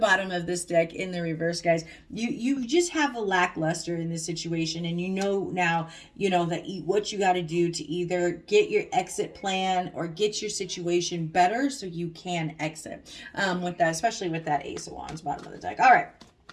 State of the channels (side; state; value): both; identical; correlation 1.00